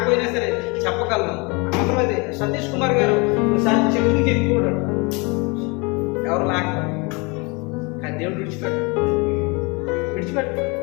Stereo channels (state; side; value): quieter; right; 29.0 dB